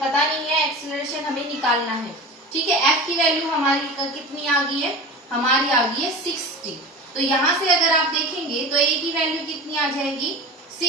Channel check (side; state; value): both; normal; correlation 0.32